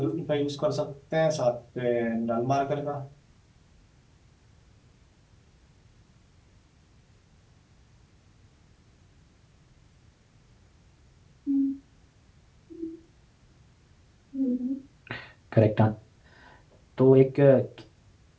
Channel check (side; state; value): both; identical; correlation 1.00